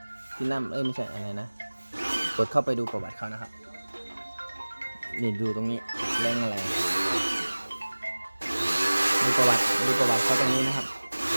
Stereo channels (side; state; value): both; inverted; correlation -1.00